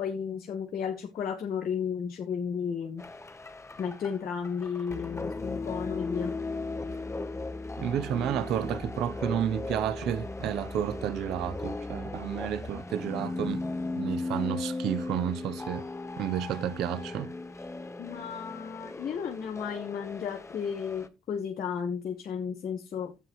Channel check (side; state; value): both; normal; correlation 0.59